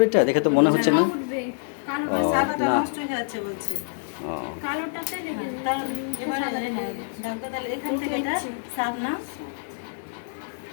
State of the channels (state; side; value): silent; right; digital silence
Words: এটা দেখে তো মনে হচ্ছে না। ও সাদাটা না, নষ্ট হয়ে যাচ্ছে বলছে। ও কালোটাতে রেখে দাও। এবারে দাগটা তাহলে এখান থেকে এটা সাত না,